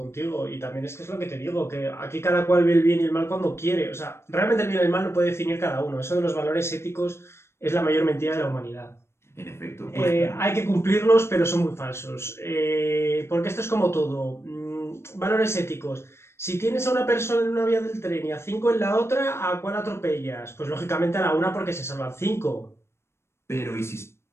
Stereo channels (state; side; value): late; right; 0.12 ms